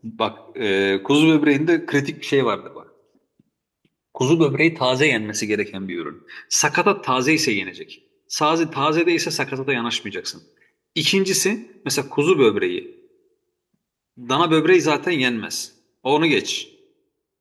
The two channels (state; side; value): identical; both; correlation 1.00